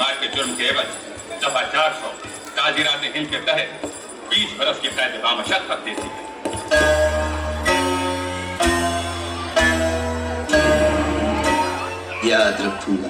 के जुर्म के एवज दफा 400 ताजीरात हिंद के तहत 20 बरस की कैद बामशक्कत देती है। याद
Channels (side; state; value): both; identical; correlation 1.00